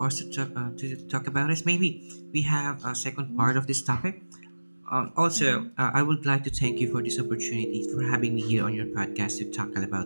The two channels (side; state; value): both; inverted; correlation -1.00